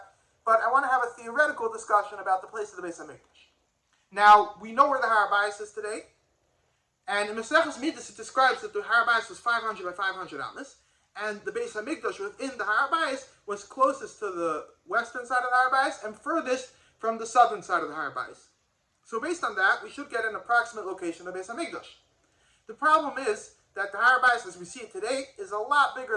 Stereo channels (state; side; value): identical; both; correlation 1.00